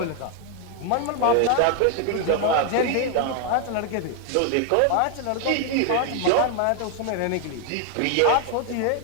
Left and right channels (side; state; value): both; different; correlation 0.00